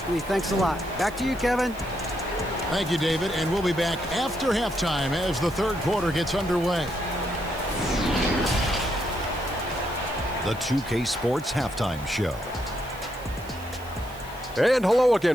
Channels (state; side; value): noise; right; hiss, 21 dB below the sound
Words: Thanks a lot. Back to you, Kevin. Thank you, David. And we'll be back after halftime as the third quarter gets underway. The 2K Sports Halftime Show. And hello